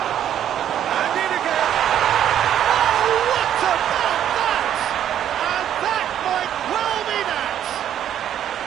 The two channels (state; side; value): quieter; left; 10.4 dB